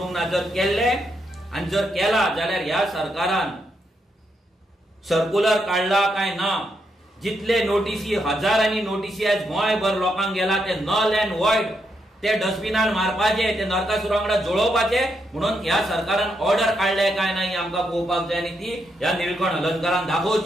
ना. जर केल्ले आनी जर केला जाल्यार ह्या सरकारान सर्क्युलर काढला काय ना, जितले नोटीसी हजारांनी नोटीसी आज गोंयभर लोकांक गेला ते नल अँड वॉइड ते डस्टबिनान मारपाचे, ते नरकासुरा वांगडा जळोवपाचे म्हणून ह्या सरकारान ऑर्डर काढले काय नाही आमकां पळोवपाक जाय आनी ती ह्या निळकंठ हलनकरान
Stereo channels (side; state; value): both; normal; correlation 0.80